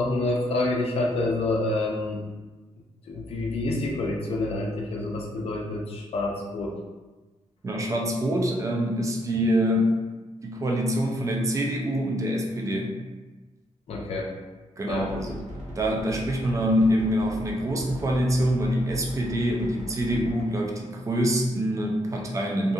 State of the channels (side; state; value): both; normal; correlation 0.73